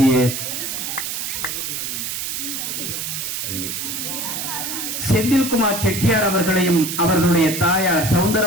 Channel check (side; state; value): right; noise; hiss, 4 dB below the sound